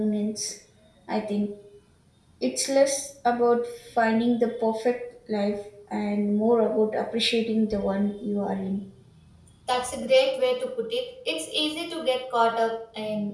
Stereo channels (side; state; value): both; identical; correlation 1.00